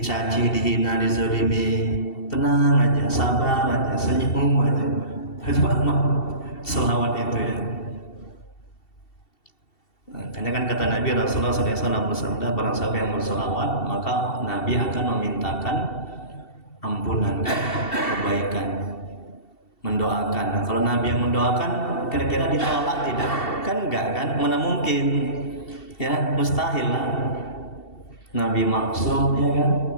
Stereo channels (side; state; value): right; late; 2.7 ms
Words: dihina, dizalimi, tenang aja, sabar aja, senyum aja. Coba selawat itu ya. Makanya kan kata Nabi Rasulullah SAW bersabda, barang siapa yang berselawat maka Nabi akan memintakan ampunan, kebaikan, mendoakan. Nah, kalau Nabi yang mendoakan kira-kira ditolak tidak? Kan enggak kan? Mana mungkin? Ya, mustahil lah. Nabi maksum, ya kan?